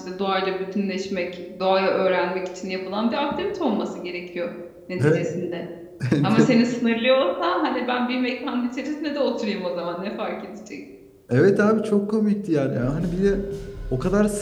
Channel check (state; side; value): identical; both; correlation 1.00